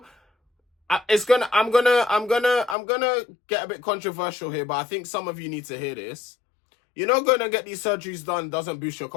I'm gonna get a bit controversial here, but I think some of you need to hear this. You know, going to get these surgeries done doesn't boost your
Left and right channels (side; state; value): right; drops out; at 2.8 s